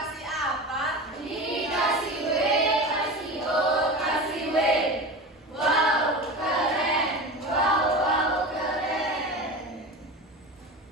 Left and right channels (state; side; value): normal; both; correlation 0.29